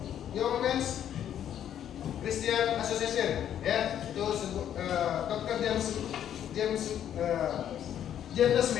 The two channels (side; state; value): right; quieter; 10.1 dB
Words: Young Men's Christian Association, ya. Itu Dr. James